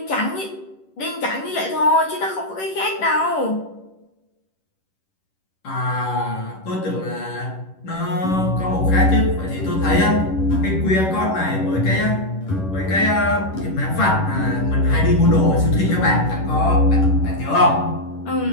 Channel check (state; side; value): late; right; 11 ms